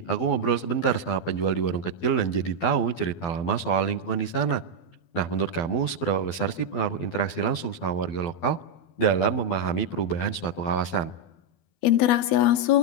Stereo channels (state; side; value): late; right; 12 ms